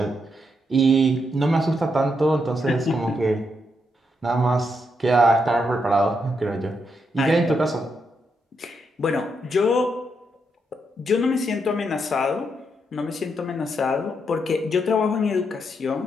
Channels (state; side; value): normal; both; correlation 0.80